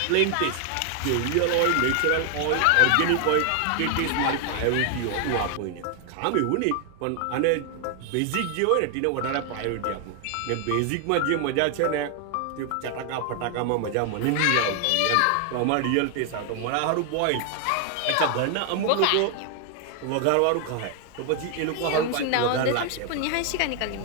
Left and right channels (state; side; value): different; both; correlation 0.00